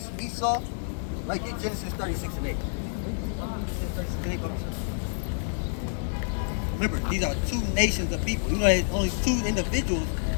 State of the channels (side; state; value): right; silent; digital silence